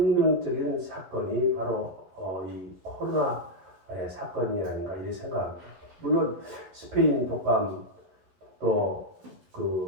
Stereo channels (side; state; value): left; late; 11 ms